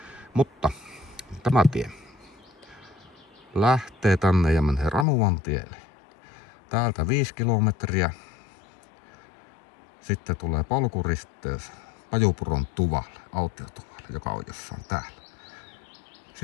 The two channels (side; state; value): right; drops out; at 5.1 s